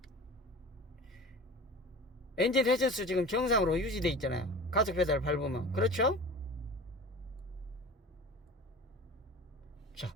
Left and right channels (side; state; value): both; normal; correlation 0.37